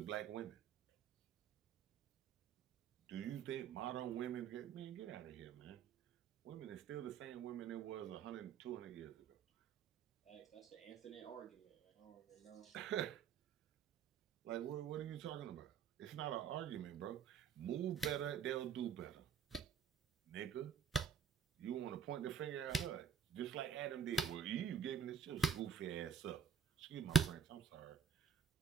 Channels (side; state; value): left; quieter; 7.2 dB